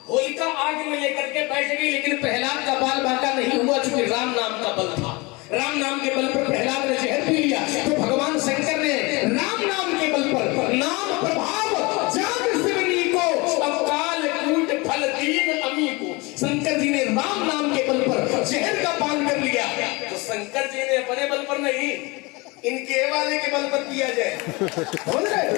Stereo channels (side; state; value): right; quieter; 25.4 dB